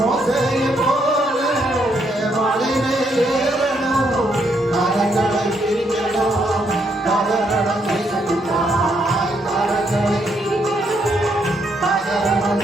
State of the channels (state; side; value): normal; both; correlation 0.75